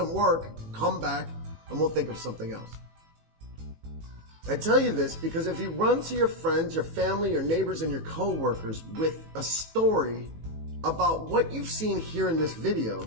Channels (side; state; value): left; late; 18 ms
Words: work, come back and we'll think of something else. I tell you this because if you run to your friends, your family, your neighbors, and your co-workers with a story about what you've seen here in this video,